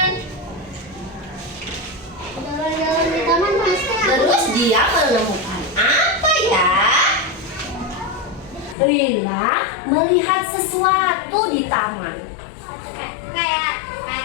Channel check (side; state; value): right; drops out; at 8.8 s